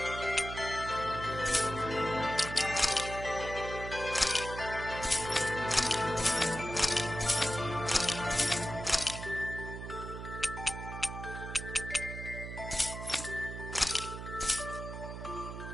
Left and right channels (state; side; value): noise; right; hum, 8 dB below the sound